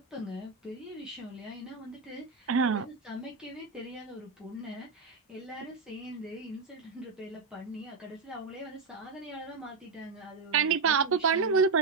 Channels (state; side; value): quieter; left; 4.6 dB